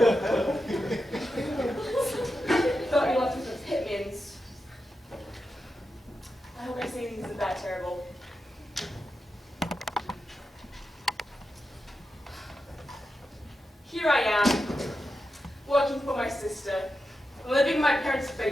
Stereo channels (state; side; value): normal; both; correlation 0.89